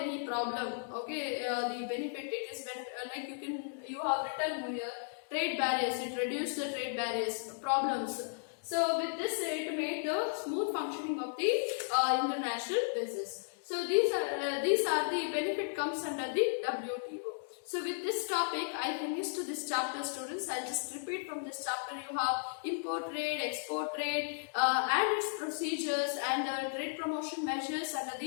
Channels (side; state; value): right; silent; digital silence